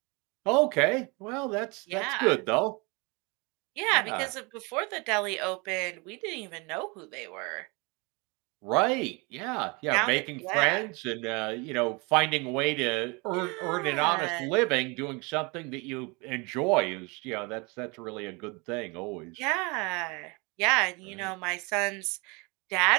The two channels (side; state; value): left; quieter; 28.6 dB